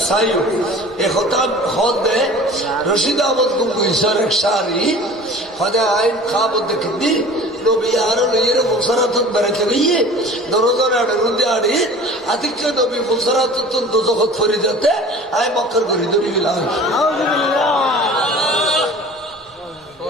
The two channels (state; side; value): normal; both; correlation 0.42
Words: साइयो एक होता होते रशीद अहमद गंगोही सर एक शारी होते आइन खाब देखती নবী আর লইয়ের মুসারাতন বেড়াকে গিয়ে দরজার আড়ে রুন্দে আড়ে আতিক্য নবী মুসারাতন দোজখত ফরি যেতে আয় মক্কার করি ধরি গেলাম